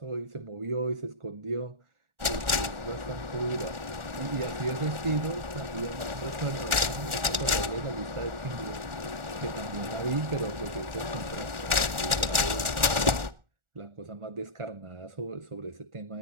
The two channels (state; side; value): late; left; 1.4 ms